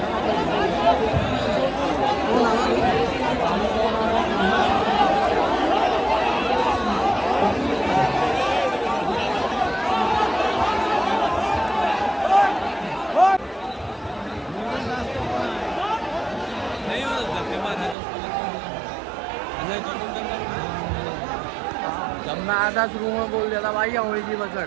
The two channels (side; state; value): left; drops out; at 17.9 s